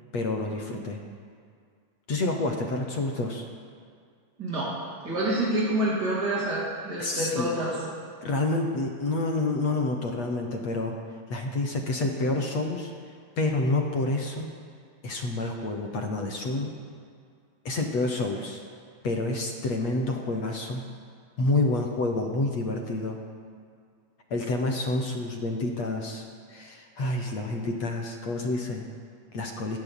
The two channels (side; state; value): right; late; 8.4 ms